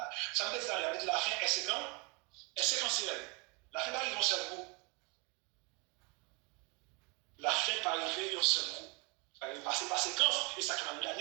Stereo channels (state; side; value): quieter; left; 30.4 dB